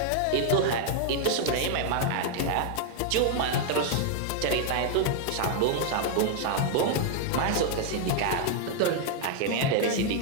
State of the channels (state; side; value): different; both; correlation 0.00